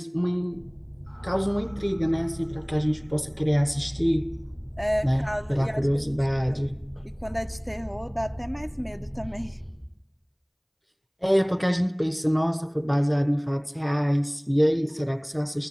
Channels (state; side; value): identical; both; correlation 1.00